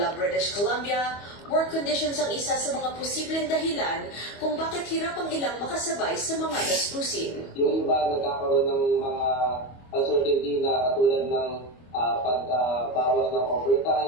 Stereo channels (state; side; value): late; right; 25 ms